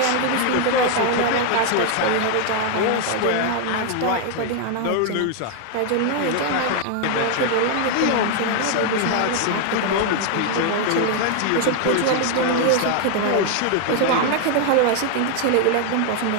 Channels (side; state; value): both; different; correlation 0.00